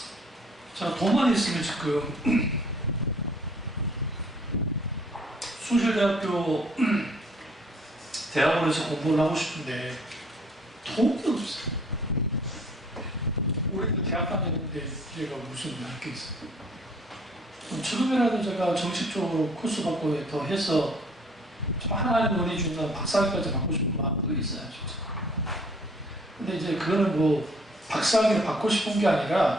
자, 돈만 있으면 지금 숭실대학교 대학원에서 공부를 하고 싶은데 돈이 없어요. 올해도 대학 다녔는데 제가 무슨 할 게 있어요. 지금이라도 제가 정식적으로 코스 받고 더 해서 좀 하나님 은혜 주는 박사학위까지 받고 싶은 마음도 있어요. 근데 이제 그거는 박사학위를 받고 싶은 게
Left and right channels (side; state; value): both; normal; correlation 0.58